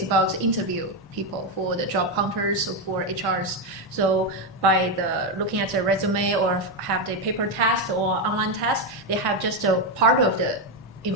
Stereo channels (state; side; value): normal; both; correlation 0.07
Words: about interview people for the job hunters or for HRs. So by looking at their resume or have the paper test or online test, they have just a part of the